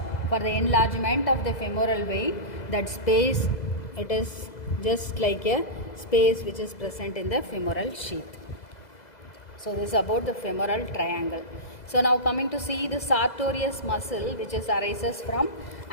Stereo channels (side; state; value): right; late; 2.0 ms